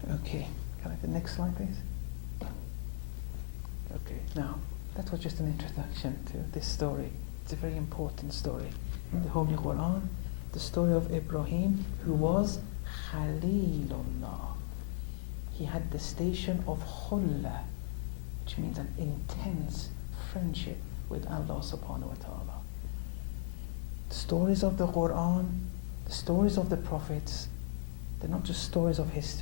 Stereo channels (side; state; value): right; silent; digital silence